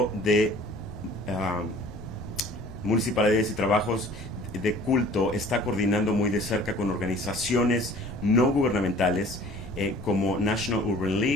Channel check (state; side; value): noise; left; rumble, 18 dB below the sound